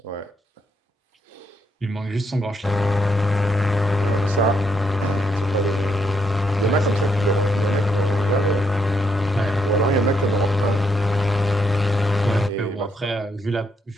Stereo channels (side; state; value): both; normal; correlation 0.77